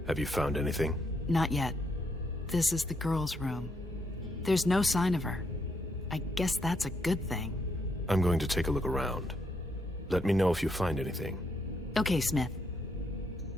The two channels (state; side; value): normal; both; correlation 0.76